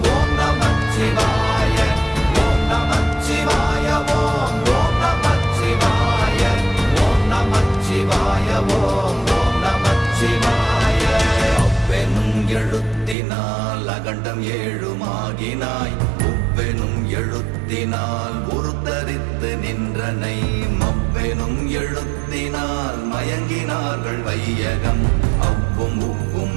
ஓம் நமச்சிவாய ஓம் நமச்சிவாய ஓம் ஓம் நமச்சிவாய ஓம் நமச்சிவாய ஓம் ஓம் நமச்சிவாய. அவ்வெனும் எழுத்தினால் அகண்டம் ஏழுமாகினாய், உவ்வெனும் எழுத்தினால் உருத்தரித்து நின்றனை, மவ்வெனும் எழுத்தினால் மயங்கினார்கள் வையகம். அவ்வும் உவ்வும்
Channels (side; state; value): left; drops out; at 13.2 s